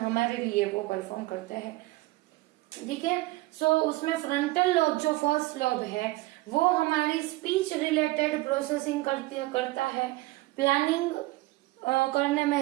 लिए वो परफॉर्म करते हैं। ठीक है, सो उसमें फ्रंटल लोब जो फर्स्ट लोब है वो हमारी स्पीच रिलेटेड प्रोसेसिंग करता है, प्लानिंग करने में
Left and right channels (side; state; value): left; quieter; 19.9 dB